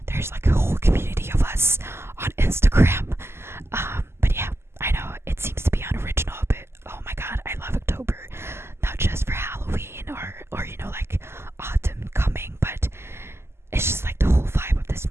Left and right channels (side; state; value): left; late; 0.12 ms